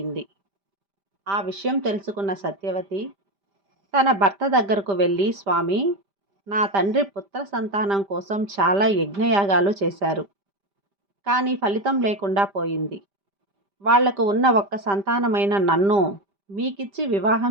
ఆ విషయం తెలుసుకున్న సత్యవతి తన భర్త దగ్గరకు వెళ్ళి, స్వామి, నా తండ్రి పుత్ర సంతానం కోసం చాలా యజ్ఞయాగాలు చేశారు. కానీ ఫలితం లేకుండా పోయింది. వాళ్లకు ఉన్న ఒక్క సంతానమైన నన్ను మీకిచ్చి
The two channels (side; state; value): left; late; 5.1 ms